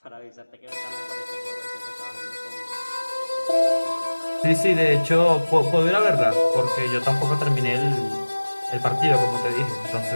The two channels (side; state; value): both; inverted; correlation -1.00